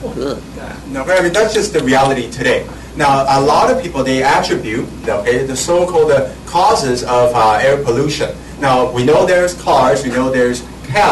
good. No, I mean, that's just the reality today. Now, a lot of people, they attribute the so-called causes of air pollution. Now, we know there's cars, we know there's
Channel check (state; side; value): identical; both; correlation 1.00